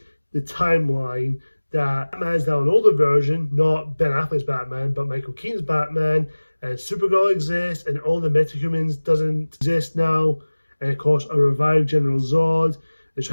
the timeline that Batman is now an older version, not Ben Affleck's Batman, but Michael Keaton's Batman, and Supergirl exists, and all the metahumans doesn't exist now, and of course a revived General Zod, they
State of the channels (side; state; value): both; inverted; correlation -1.00